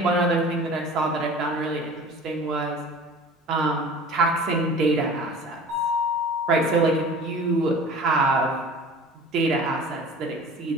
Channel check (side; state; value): both; normal; correlation 0.42